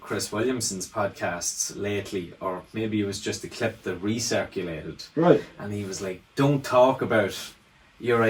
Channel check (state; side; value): identical; both; correlation 1.00